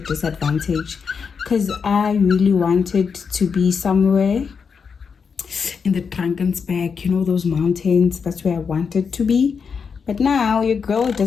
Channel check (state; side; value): quieter; right; 5.9 dB